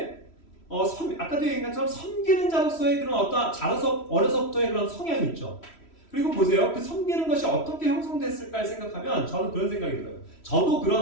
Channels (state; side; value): late; right; 3.1 ms